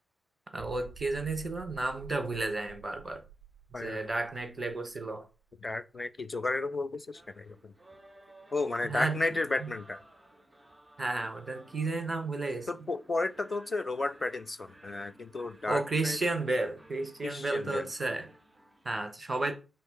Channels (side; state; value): both; normal; correlation 0.88